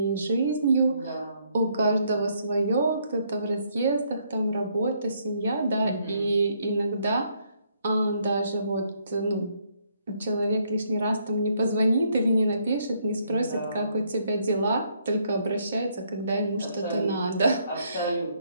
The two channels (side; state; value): both; inverted; correlation -0.70